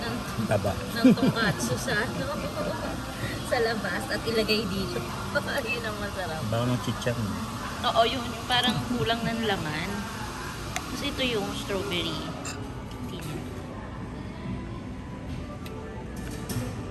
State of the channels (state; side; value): identical; both; correlation 1.00